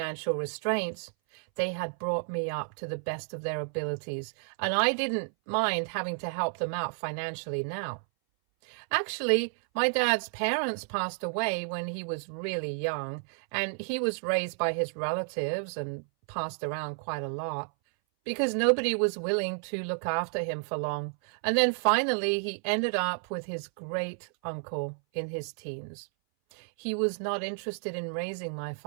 restraints, they had brought me up to the best of their abilities. And I didn't mind having to help them out financially now. Actually, my dad's parents passed away when he was really young, and he was raised by his relatives and passed around quite a lot because nobody was willing to look after him for long. And then finally, he ended up with his great uncle in his teens. He was not interested in raising my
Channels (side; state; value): left; silent; 57 dB below the other